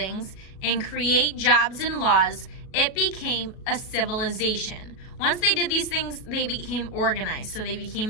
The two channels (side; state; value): right; late; 37 ms